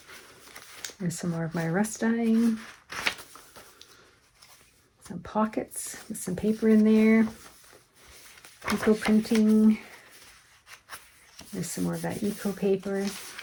There's some more of my rust dyeing. Some pockets with some paper in there. Eco printing. There's some more of that eco paper.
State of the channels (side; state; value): both; identical; correlation 1.00